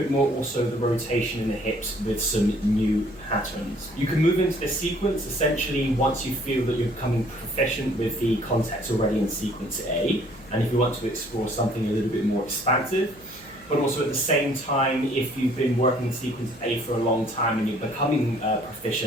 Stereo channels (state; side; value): noise; right; hum, 23 dB below the sound